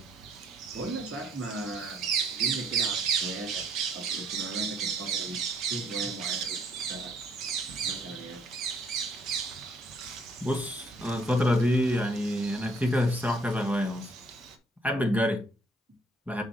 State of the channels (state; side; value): normal; both; correlation 0.64